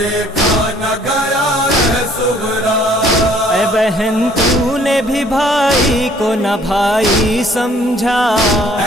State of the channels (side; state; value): both; normal; correlation 0.59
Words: نہ گیا ہے صغرا۔ اے بہن تو نے بھی بھائی کو نہ بھائی سمجھا،